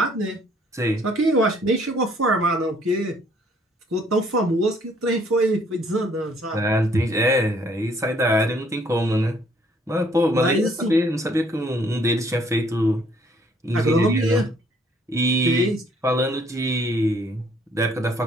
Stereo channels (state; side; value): normal; both; correlation 0.63